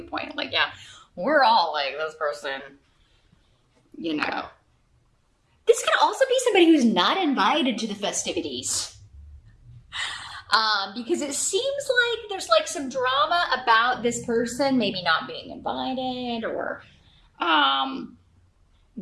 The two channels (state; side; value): identical; both; correlation 1.00